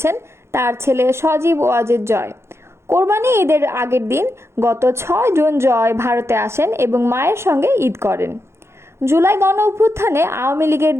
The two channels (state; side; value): late; left; 0.13 ms